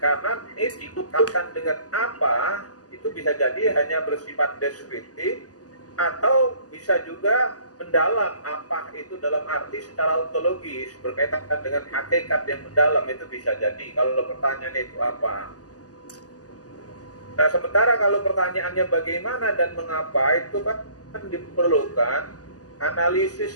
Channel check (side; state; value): right; late; 0.67 ms